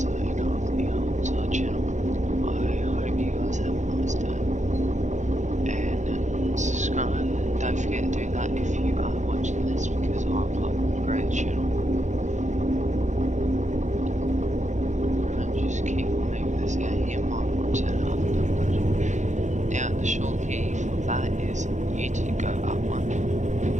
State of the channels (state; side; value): late; left; 0.35 ms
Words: of the Outside channel, I hope you guys have a nice day. And subscribe. Don't forget to do that if you are watching this, because I upload a great channel. And just keep moving this game. You might want to turn it up a little bit. Now the short key for that is U to go up one,